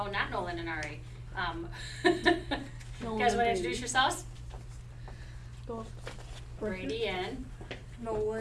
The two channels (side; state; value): both; identical; correlation 1.00